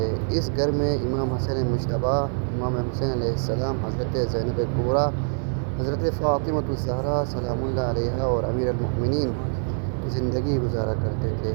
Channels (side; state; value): left; silent; 56 dB below the other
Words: اس گھر میں امام حسن مجتبیٰ، امام حسین علیہ السلام، حضرت زینب کبریٰ، حضرت فاطمۃ الزہرا سلام اللہ علیہا اور امیر المؤمنین زندگی گزارا کرتے تھے۔